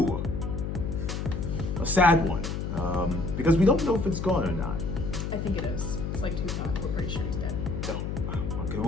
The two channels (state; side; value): noise; left; hum, 3 dB below the sound